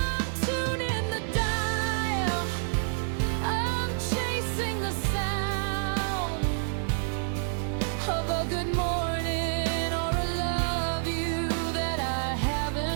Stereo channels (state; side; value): silent; left; 59 dB below the other